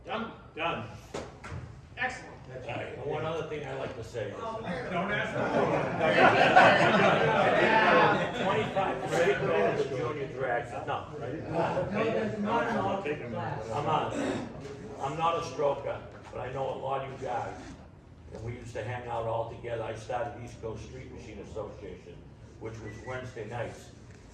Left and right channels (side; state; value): both; identical; correlation 1.00